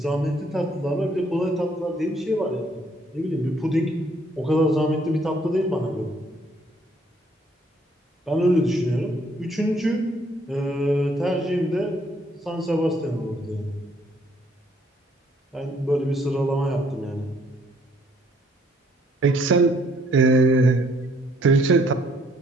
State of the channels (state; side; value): normal; both; correlation 0.65